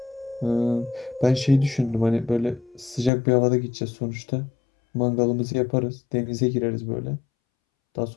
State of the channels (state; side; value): drops out; right; at 3.1 s